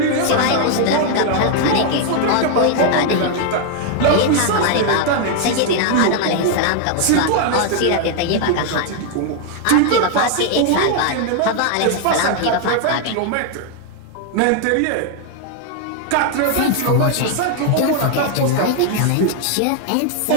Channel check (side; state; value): both; different; correlation 0.00